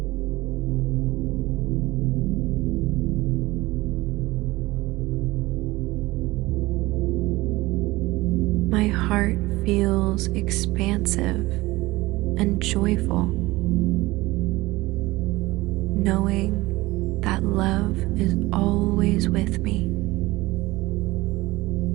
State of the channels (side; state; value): left; quieter; 19.9 dB